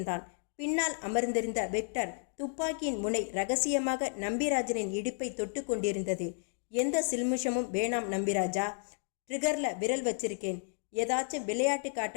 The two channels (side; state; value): right; silent; 56 dB below the other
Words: பின்னால் அமர்ந்திருந்த விக்டர் துப்பாக்கியின் முனை ரகசியமாக நம்பிராஜனின் இடுப்பை தொட்டு கொண்டிருந்தது. எந்த சில்மிஷமும் வேணாம் நம்பிராஜா, ட்ரிகர்ல விரல் வச்சிருக்கேன். ஏதாச்சும் விளையாட்டு